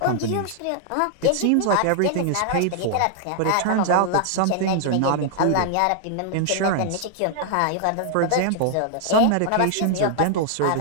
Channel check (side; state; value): both; different; correlation -0.01